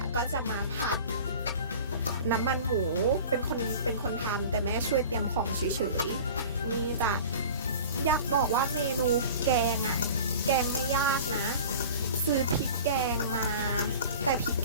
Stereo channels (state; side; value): inverted; both; correlation -0.39